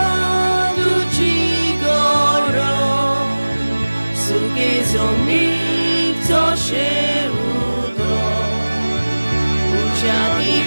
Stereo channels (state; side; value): inverted; both; correlation -1.00